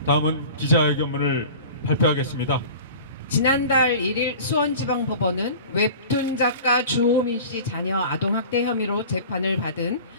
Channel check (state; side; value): inverted; both; correlation -0.39